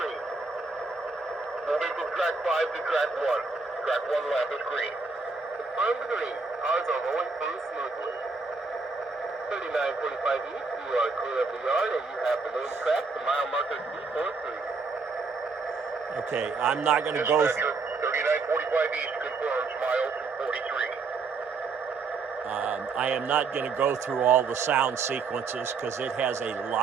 Moving from track 5 to track 1. Track 1 lap is green. Confirm the green. Cars are rolling through smoothly. 3945 East, you are clear of the yard and you have the main track to mile marker 243. Okay, I'm not going to go... Dispatcher, 3945 East confirms mile 243. I am not going to go through all the sound sequences because it has a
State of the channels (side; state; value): left; quieter; 4.3 dB